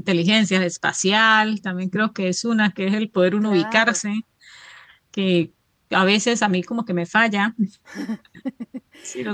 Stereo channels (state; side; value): identical; both; correlation 1.00